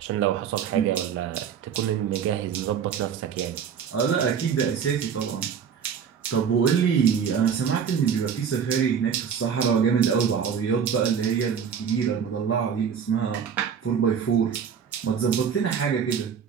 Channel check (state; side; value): quieter; left; 7.4 dB